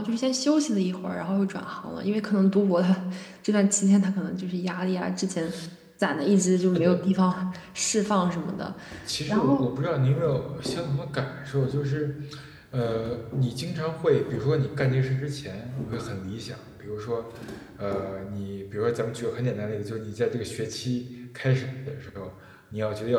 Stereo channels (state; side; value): identical; both; correlation 1.00